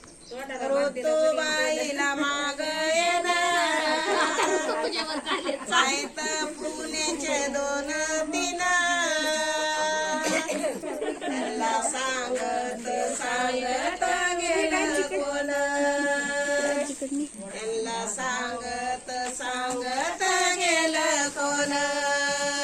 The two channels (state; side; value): identical; both; correlation 1.00